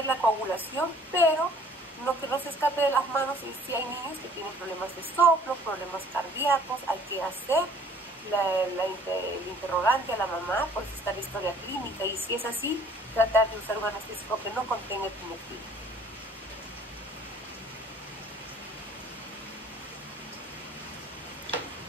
la coagulación, pero no que no se escape de las manos. Y si hay niños que tienen problemas de soplo, problemas cardíacos, hay que hacer el interrogante a la mamá, pues está la historia clínica, y si es así, tratar de usar un anestésico que no contenga epinefrina.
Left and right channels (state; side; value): normal; both; correlation 0.55